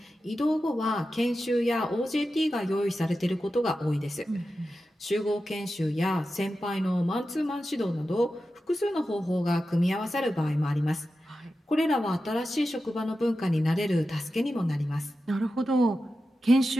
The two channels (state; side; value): normal; both; correlation 0.92